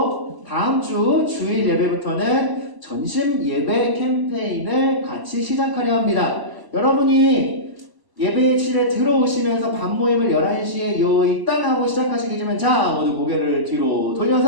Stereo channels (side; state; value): left; late; 1.0 ms